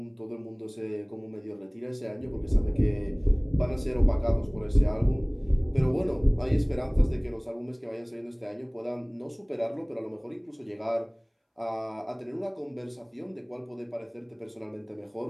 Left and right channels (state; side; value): identical; both; correlation 1.00